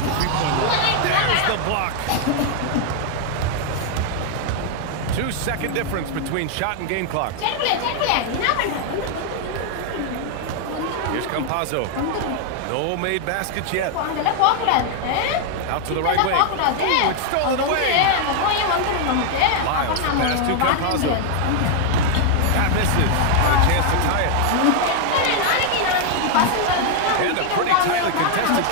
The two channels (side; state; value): both; different; correlation 0.00